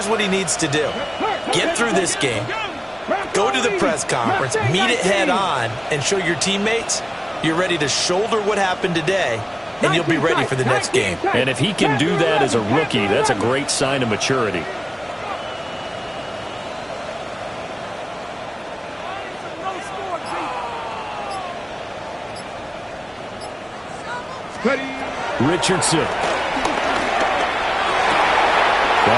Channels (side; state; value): both; identical; correlation 1.00